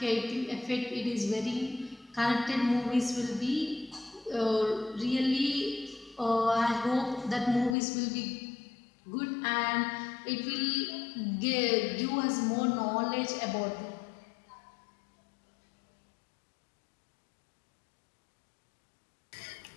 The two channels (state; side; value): drops out; right; at 7.8 s